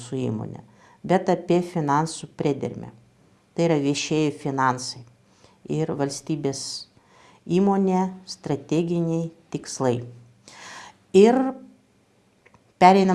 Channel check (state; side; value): identical; both; correlation 1.00